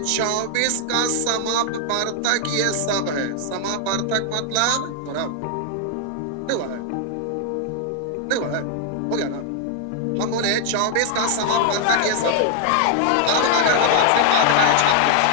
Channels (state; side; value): different; both; correlation 0.00